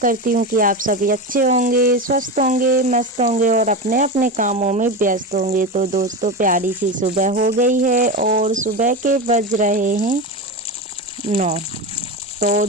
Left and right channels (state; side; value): normal; both; correlation 0.20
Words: हूँ कि आप सभी अच्छे होंगे, स्वस्थ होंगे, मस्त होंगे और अपने अपने कामों में व्यस्त होंगे। तो दोस्तों, प्यारी सी सुबह हो गई है और सुबह के बज रहे हैं 9। तो